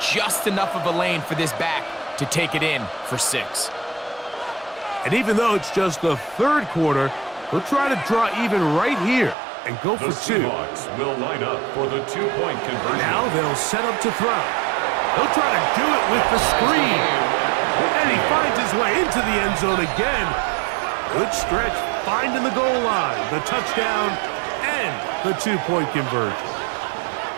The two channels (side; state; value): left; drops out; at 9.3 s